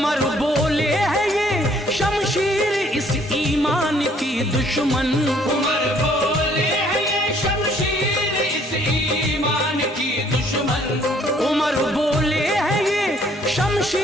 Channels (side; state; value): both; normal; correlation 0.62